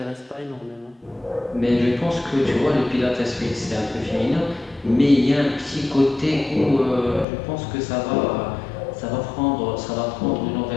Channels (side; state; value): right; drops out; at 7.2 s